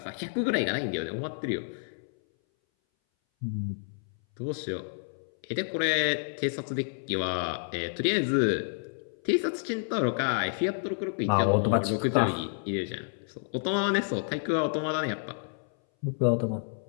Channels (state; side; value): silent; right; 58 dB below the other